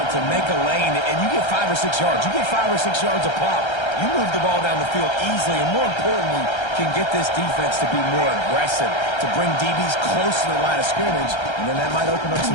to make a lane, and you get 5 or 6 yards. You get 5 or 6 yards a pop. You move the ball down the field easily, and more importantly, can get this defense to be more aggressive, to bring DBs close to the line of scrimmage, and then that might open up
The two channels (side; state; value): right; late; 1.3 ms